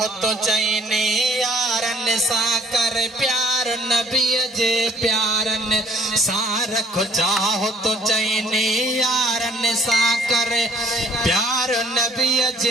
तो चईन यारन सा कर प्यार नबी जे प्यारन सा। रखो चाहो तो चईन यारन सा कर प्यार नबी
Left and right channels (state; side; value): normal; both; correlation 0.59